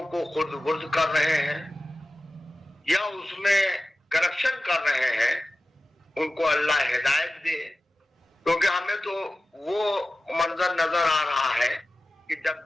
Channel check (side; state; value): both; normal; correlation 0.94